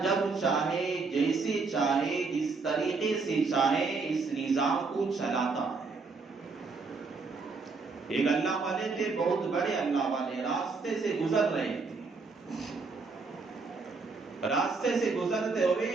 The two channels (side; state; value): left; quieter; 4.3 dB